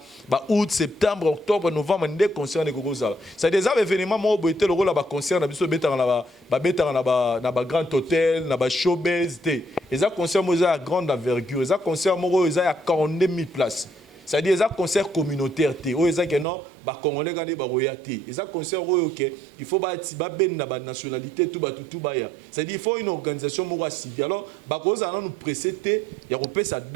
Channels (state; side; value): drops out; left; at 16.4 s